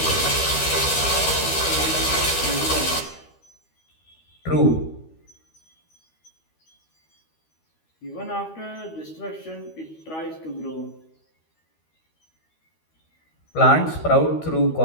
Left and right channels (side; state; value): right; late; 13 ms